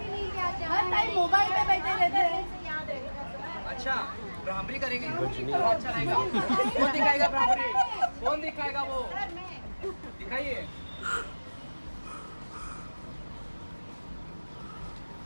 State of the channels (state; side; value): inverted; both; correlation -1.00